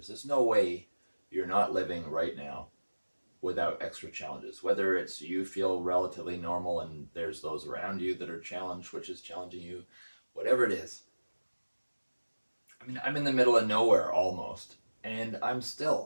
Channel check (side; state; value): both; inverted; correlation -1.00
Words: There's no way you're not living right now without extra challenges. Whether it's you feel relatively normal and there's those around you that are challenged, which is challenging you, whatever it is. I mean, I'm in the middle of nowhere almost, and I'm